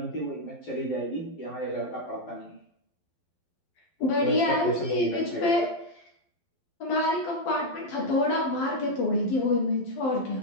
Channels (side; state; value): right; late; 12 ms